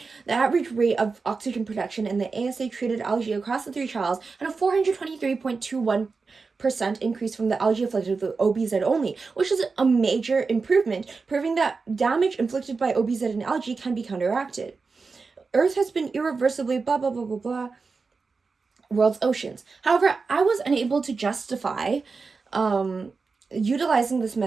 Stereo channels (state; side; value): quieter; left; 4.5 dB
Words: The average rate of oxygen production in the ASA-treated algae across the 3 trials had a 423.21% increase from the algae afflicted with OBZ only, which is a major improvement, proving that damage inflicted by OBZ in algae can be counteracted. Earth has been irreversibly blah blah blah blah blah world's oceans. However, I was unable to justify utilizing this